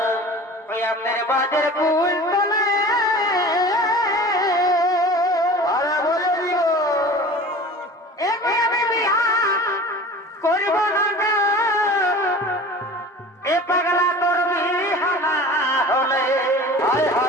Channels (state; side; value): normal; both; correlation 0.39